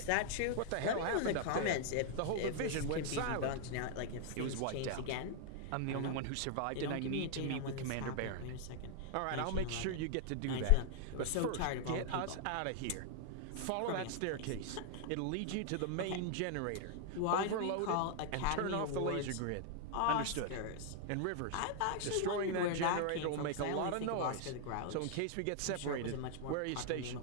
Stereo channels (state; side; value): different; both; correlation 0.00